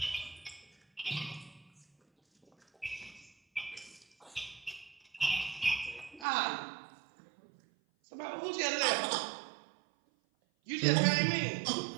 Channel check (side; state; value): left; drops out; at 6.2 s